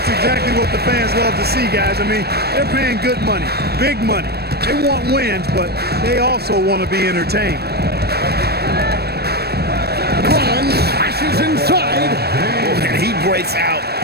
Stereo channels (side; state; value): left; late; 0.47 ms